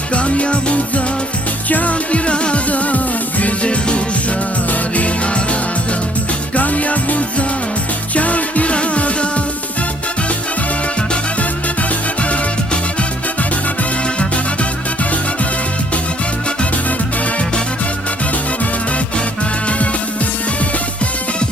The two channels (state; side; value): normal; both; correlation 0.62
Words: kan yavuzat, can irada, güzel ruşar bin arada, kan yavuzat, can irada.